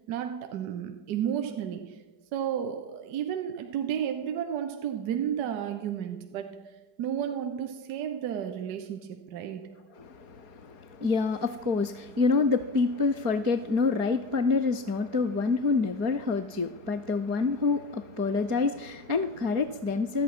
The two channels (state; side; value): late; left; 4.7 ms